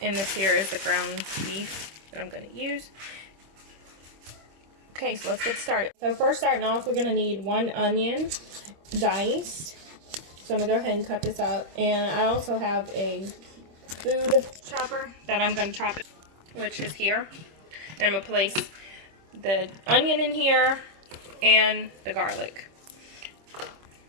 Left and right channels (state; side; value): late; left; 26 ms